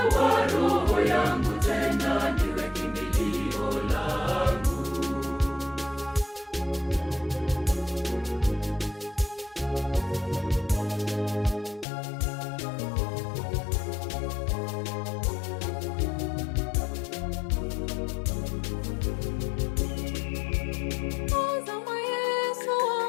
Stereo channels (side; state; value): right; drops out; at 11.9 s